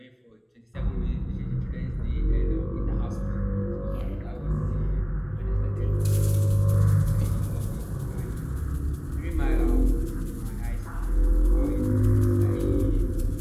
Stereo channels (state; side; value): identical; both; correlation 1.00